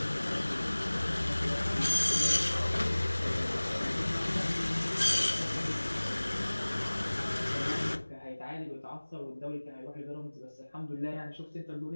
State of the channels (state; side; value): inverted; both; correlation -1.00